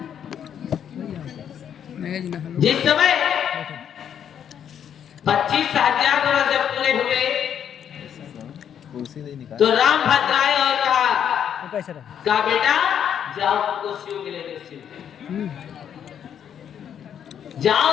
जिस समय 25,000 वर्ष जब पूरे हुए, तो राम भद्र आए और कहा बेटा जाओ, तुमको शिव मिलेंगे, शिव जाओ,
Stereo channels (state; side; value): quieter; right; 8.8 dB